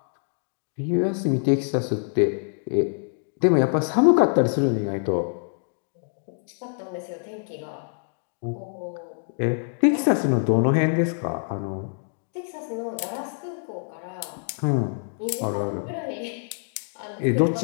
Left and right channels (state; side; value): silent; right; digital silence